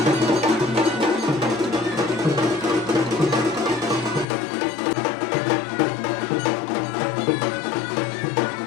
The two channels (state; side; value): drops out; right; at 4.2 s